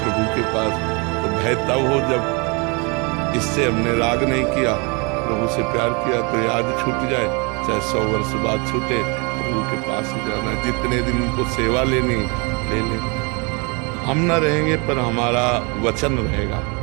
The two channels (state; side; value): quieter; left; 31.1 dB